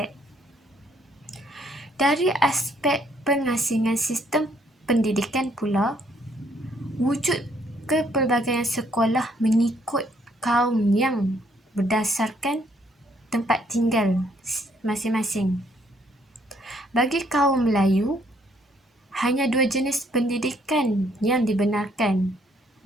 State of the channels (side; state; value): both; normal; correlation 0.67